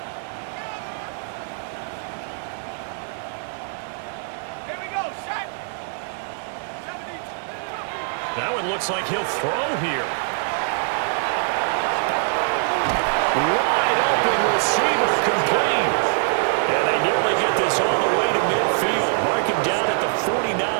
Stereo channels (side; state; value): left; silent; digital silence